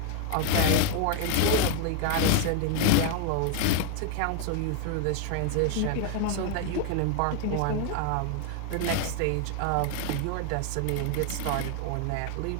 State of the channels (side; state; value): both; different; correlation 0.00